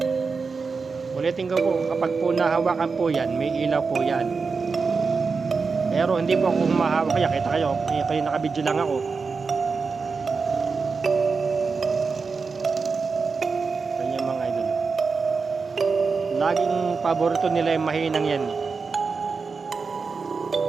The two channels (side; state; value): left; quieter; 4.8 dB